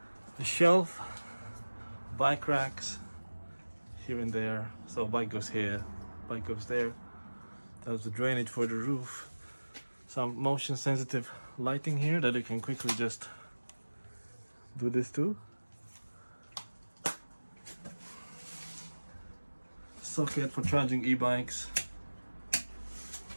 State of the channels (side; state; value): both; inverted; correlation -1.00